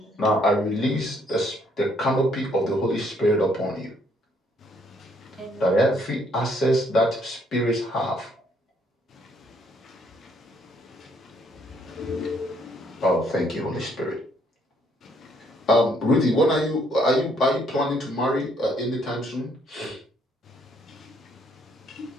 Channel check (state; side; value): normal; both; correlation 0.68